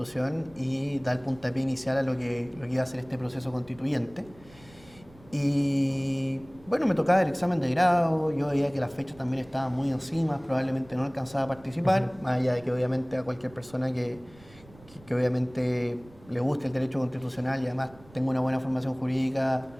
y da el puntapié inicial a lo que iba a ser este proceso constituyente. Y bueno, me tocaba el examen de grado, yo veía que las fechas también estaban muy encima, probablemente no alcanzaba a participar, más allá de que obviamente a cualquier persona que obviamente le guste el derecho constitucional y además tenga una buena formación jurídica,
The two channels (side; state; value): right; noise; rumble, 24 dB below the sound